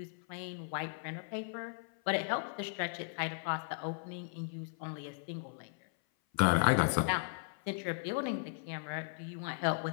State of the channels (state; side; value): silent; right; 53 dB below the other